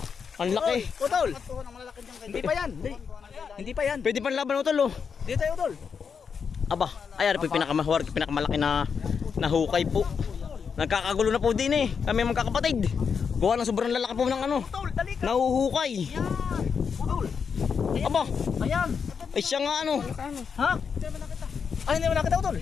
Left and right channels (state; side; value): quieter; right; 6.3 dB